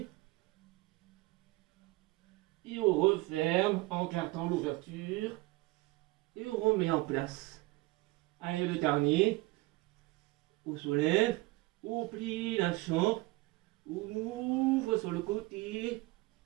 Et on referme en gardant l'ouverture. Et on remet en place. Allez, le dernier. On soulève, on plie la chambre. On ouvre sur le côté.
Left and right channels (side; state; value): left; quieter; 21.1 dB